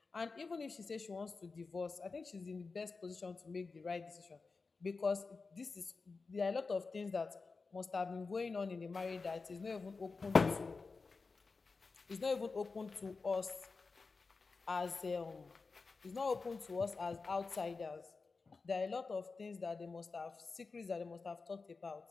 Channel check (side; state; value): right; quieter; 4.3 dB